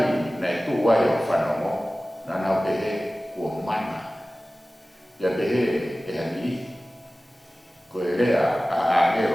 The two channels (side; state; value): both; normal; correlation 0.97